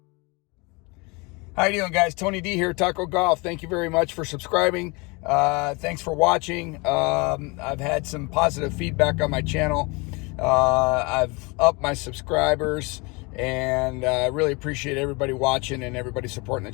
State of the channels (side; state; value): right; quieter; 27.7 dB